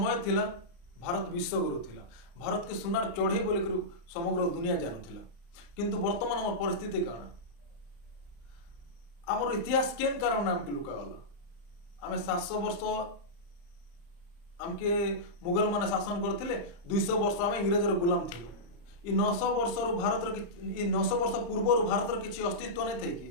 थिला भारत विश्वगुरु थिला, भारत के सुनार चढ़े बोल समग्र दुनिया जानूला। किंतु वर्तमान आम परिस्थिति कण, आमर इतिहास केन कारण आमके लुकागला। आम 700 वर्ष आमके मुगल माने शासन करथिले, 200 वर्ष आम इंग्रेजर गुलाम थिलु। इ 900 वर्ष भारत 900 वर्ष पूर्व भारत किसी अस्तित्व नहीं थे कि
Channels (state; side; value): late; right; 35 ms